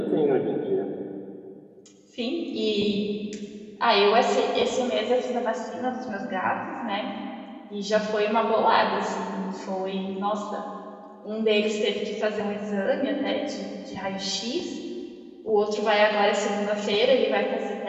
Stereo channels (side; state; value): both; identical; correlation 1.00